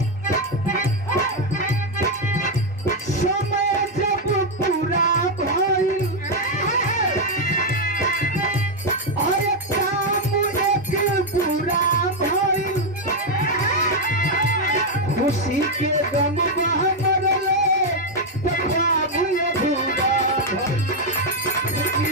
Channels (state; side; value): normal; both; correlation 0.02